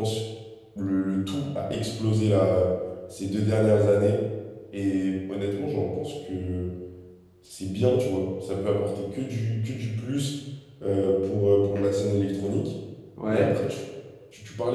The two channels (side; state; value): both; identical; correlation 1.00